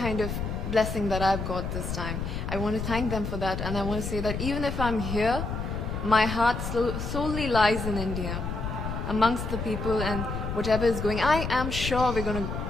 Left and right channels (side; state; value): left; noise; rumble, 4 dB below the sound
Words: of blessing that I've got this time. I want to thank them for that, and I want to say that even if I'm here, my heart solely lies in India, amongst the people, and whatever is going, I am sure we're going